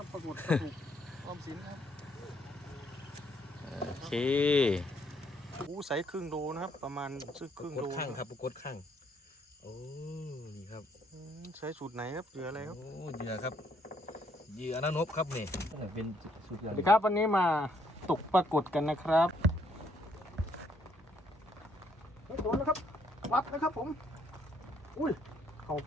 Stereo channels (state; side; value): normal; both; correlation 0.69